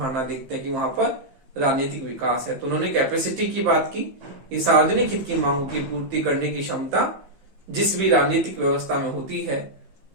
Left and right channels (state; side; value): late; left; 15 ms